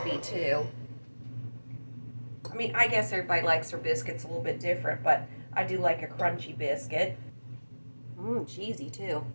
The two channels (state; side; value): inverted; both; correlation -1.00